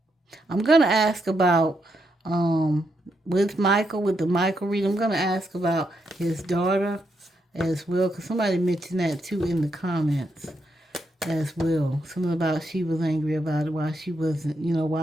I'm gonna ask about with Michael, with the Michael read. I'm gonna ask about his daughter as well, because somebody mentioned that too in the comments as well. Something about she was angry about it, why she wasn't,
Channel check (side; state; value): both; normal; correlation 0.80